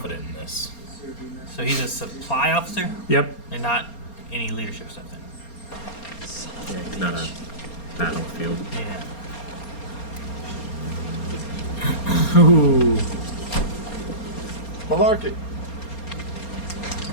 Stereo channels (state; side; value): late; right; 4.3 ms